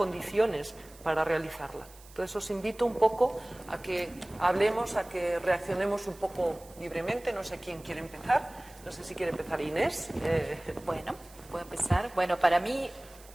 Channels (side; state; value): right; noise; hiss, 23 dB below the sound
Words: para realizarla. Entonces os invito un poco a que hablemos, a que reaccionemos un poco libremente, no sé quién quiere empezar. No sé si quiere empezar Inés. Bueno, puedo empezar. Bueno, para mí